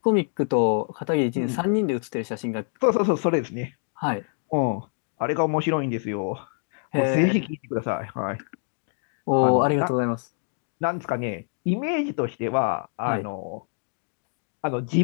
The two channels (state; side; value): silent; right; 61 dB below the other